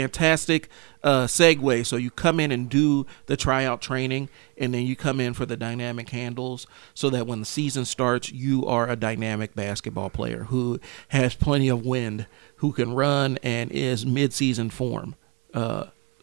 segue. So you come in and do the tryout training, and then you come in for the dynamic handles so that when the season starts, you are a dynamic basketball player who has plenty of wind, who can run, and is mid-season form.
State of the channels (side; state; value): left; quieter; 31.0 dB